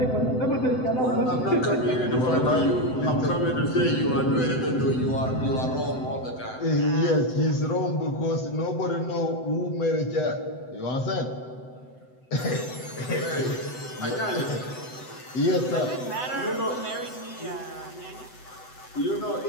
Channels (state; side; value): late; right; 7.9 ms